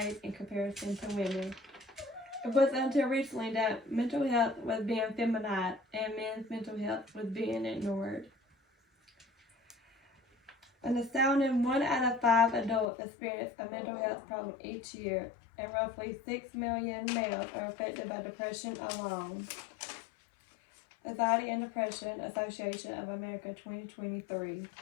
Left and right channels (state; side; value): drops out; right; at 12.9 s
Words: in comparison to women. It wasn't until recently that mental health was being feminized and men's mental health was being ignored. An astounding 1 out of 5 adults experience a mental health problem each year, and roughly 6 million males are affected by depression alone. Anxiety and Depression Association of America 2023.